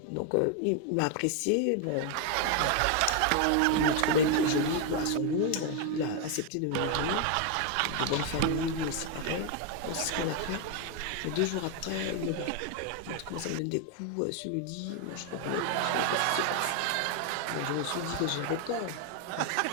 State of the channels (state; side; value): different; both; correlation 0.01